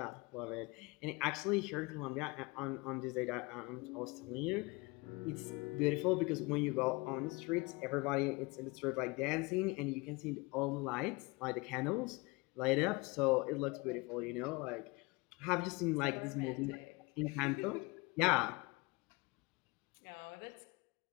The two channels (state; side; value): quieter; right; 25.7 dB